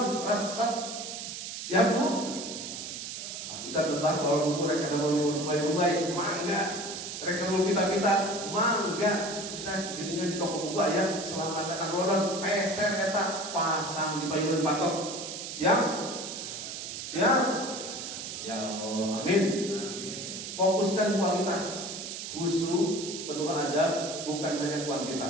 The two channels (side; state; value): right; noise; hiss, 7 dB below the sound